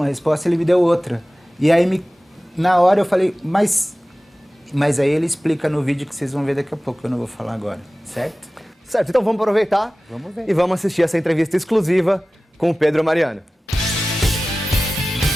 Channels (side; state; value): both; normal; correlation 0.97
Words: resposta, ele me deu outra. E aí, na hora eu falei, mas aí ele explica no vídeo que vocês vão ver daqui a pouco, eu não vou falar agora, certo? Certo, então vamos aproveitar e vamos assistir essa entrevista exclusiva com o Pedro Mariano.